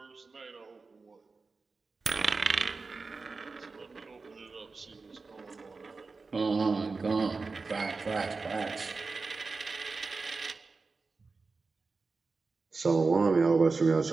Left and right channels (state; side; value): quieter; left; 4.2 dB